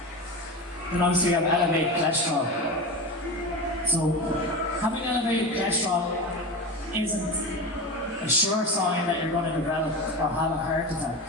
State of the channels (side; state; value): both; normal; correlation 0.24